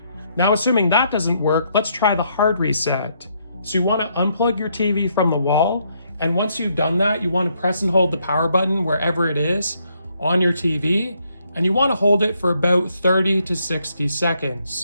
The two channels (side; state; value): both; inverted; correlation -0.73